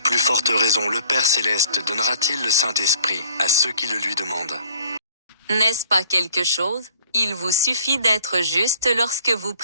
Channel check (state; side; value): inverted; both; correlation -0.56